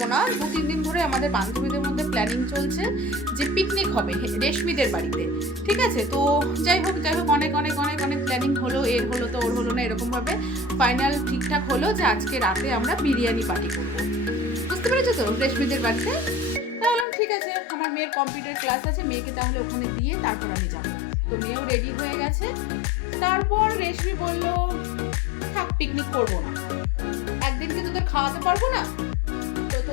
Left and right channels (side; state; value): right; drops out; at 17.1 s